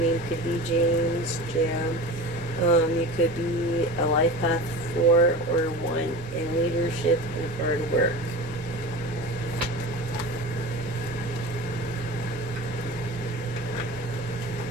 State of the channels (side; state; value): both; normal; correlation 0.33